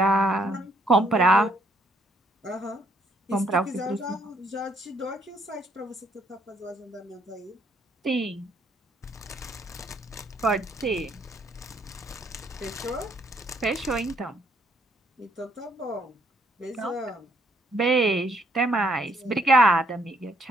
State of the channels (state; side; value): normal; both; correlation 0.69